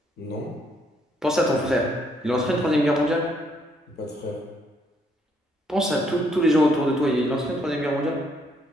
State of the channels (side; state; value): both; normal; correlation 0.71